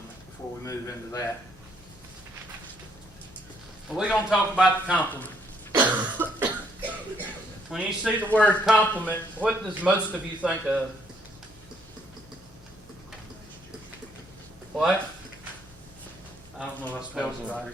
before we move into that. Well, we're going to talk about the compliment. When you see the word compliment, what does most of you think of? What? I don't know if I spelled it right.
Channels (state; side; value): normal; both; correlation 0.69